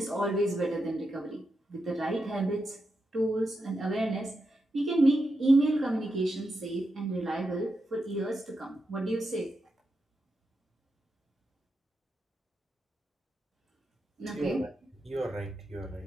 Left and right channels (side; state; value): both; normal; correlation 0.86